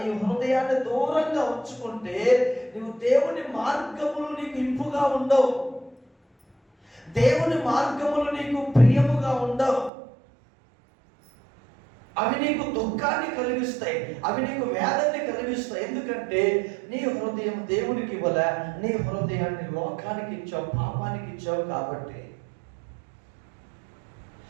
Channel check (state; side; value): drops out; left; at 9.9 s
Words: ఈ హృదయాన్ని దూరంగా ఉంచుకుంటే నువ్వు దేవుని మార్గములు నీకు ఇంపుగా ఉండవు, దేవుని మార్గములు నీకు ప్రియముగా ఉండవు. అవి నీకు దుఃఖాన్ని కలిగిస్తాయి, అవి నీకు వేదన్ని కలిగిస్తాయి. ఎందుకంటే నీ హృదయం దేవునికి ఇవ్వలే, నీ హృదయాన్ని లోకానికి ఇచ్చావు, పాపానికి ఇచ్చావు. కాబట్టి